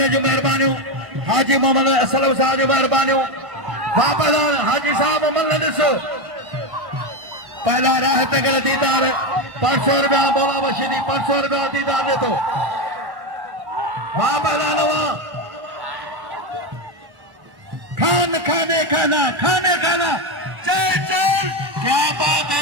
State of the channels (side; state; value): left; late; 1.1 ms